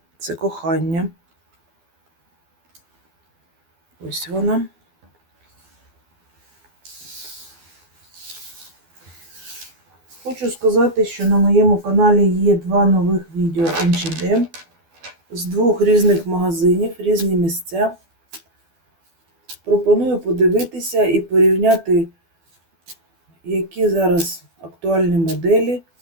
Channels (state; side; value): late; left; 12 ms